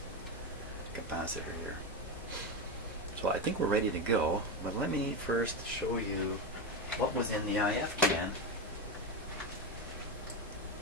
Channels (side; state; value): both; normal; correlation 0.14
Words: capacitor here. So I think we're ready to go, but let me first show you what was in the IF can.